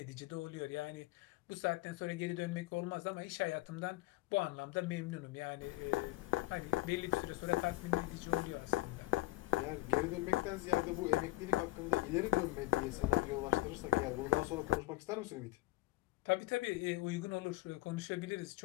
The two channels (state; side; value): quieter; right; 18.9 dB